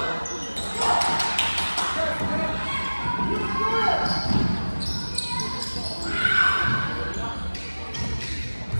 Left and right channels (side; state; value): both; inverted; correlation -1.00